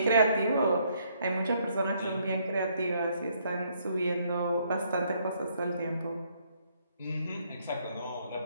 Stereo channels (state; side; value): inverted; both; correlation -0.70